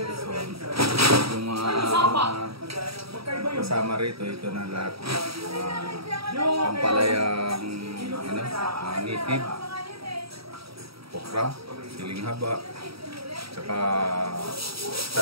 So yung mga kasama rito, ito na lahat. Pampalayang native, okra, siling haba, tsaka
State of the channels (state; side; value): late; left; 0.76 ms